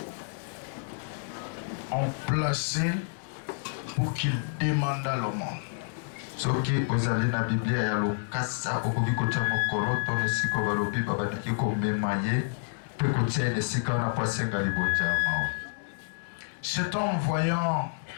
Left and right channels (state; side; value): silent; right; digital silence